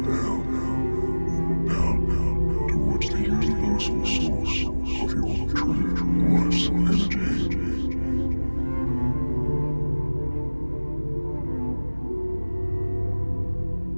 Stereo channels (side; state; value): both; inverted; correlation -1.00